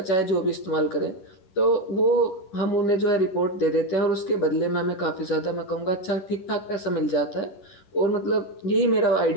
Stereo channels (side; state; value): right; late; 10 ms